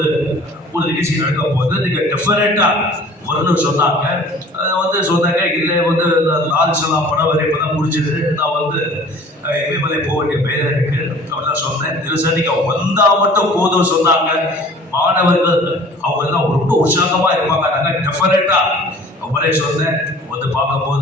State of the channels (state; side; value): normal; both; correlation 0.48